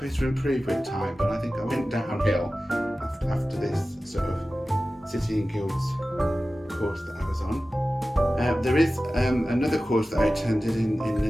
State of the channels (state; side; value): normal; both; correlation 0.95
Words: to improve with time, but I think I went downhill after this sort of City and Guilds course that I was on. There is another course that I attended in